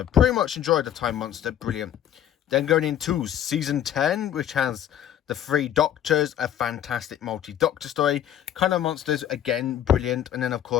Pretty much enjoyed the Time Monster. Brilliant. Then going into Season 10, which has the Three Doctors, a fantastic multi-doctor story. Kind of Monsters, again, brilliant. And then, of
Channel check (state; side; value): quieter; right; 10.7 dB